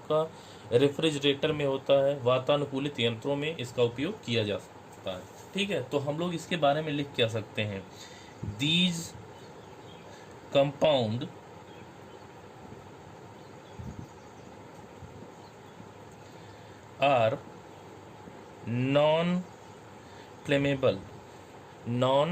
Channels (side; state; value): both; identical; correlation 1.00